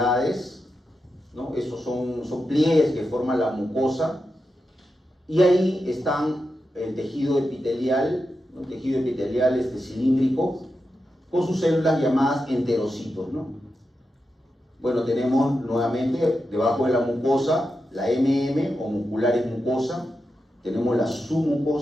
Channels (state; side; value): normal; both; correlation 0.89